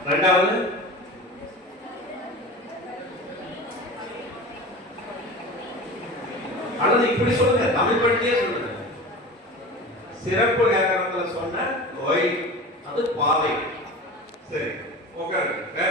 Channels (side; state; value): both; normal; correlation 0.33